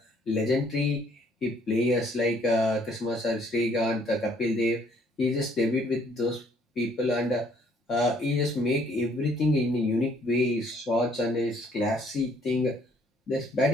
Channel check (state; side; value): normal; both; correlation 0.63